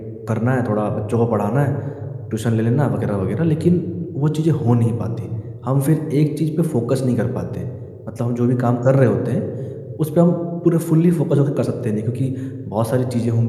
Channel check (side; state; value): both; identical; correlation 1.00